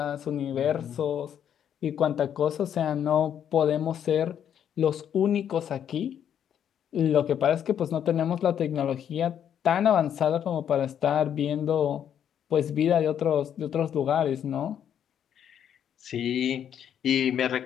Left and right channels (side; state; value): right; quieter; 9.2 dB